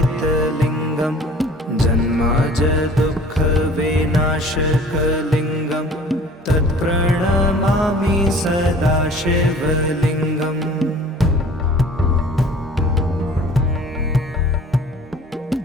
जन्माजदुःखविनाशकलिङ्गं तत् प्रणमामि सदा शिवलिङ्गम्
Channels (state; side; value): normal; both; correlation 0.47